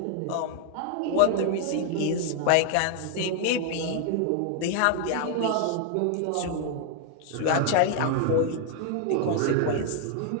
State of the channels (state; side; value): different; both; correlation 0.00